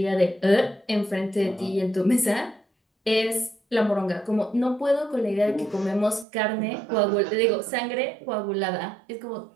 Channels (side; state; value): left; drops out; at 6.2 s